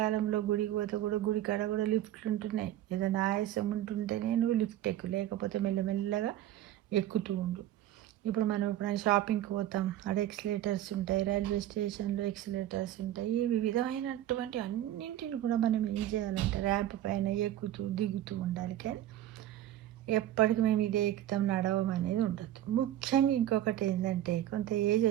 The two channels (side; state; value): left; quieter; 12.8 dB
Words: గుడికి పోతే కూడా గుడి కాడ కూడా లిఫ్ట్లు ఉంటున్నాయి. ఏదైనా ఆయాసం ఉంటుంటేనే నువ్వు లిఫ్ట్ ఎక్కు, లేకపోతే మెల్లమెల్లగా ఎక్కుతూ ఉండు. ఇప్పుడు మనం ఎప్పుడైనా షాపింగ్కి పోతాం, అక్కడ ఎక్సిలేటర్స్ ఉంటాయి, రైల్వే స్టేషన్లో ఎక్సిలేటర్స్ ఉంటాయి. ఈ విధమైనటువంటి అన్నింటిని కూడా మనం ఏం చేయాలంటే ర్యాంప్ పైన ఎక్కుతూ దిగుతూ ఉండాలి. కానీ ఎప్పటికి మేము ఇదే ఎక్కుతాం, నడవం అనేది ఉండదు. ముఖ్యంగా ఇంకొకటి ఏంటంటే, కొంత ఏజ్